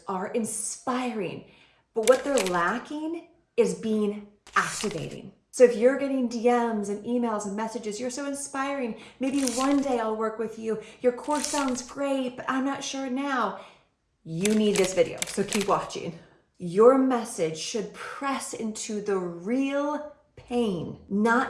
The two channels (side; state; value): both; identical; correlation 1.00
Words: are inspiring, but what they're lacking is being activating. So if you're getting DMs and emails and messages, you're so inspiring, maybe one day I'll work with you, your course sounds great, but I'm not sure now. You need this video, so keep watching. Your message should press into the real pain,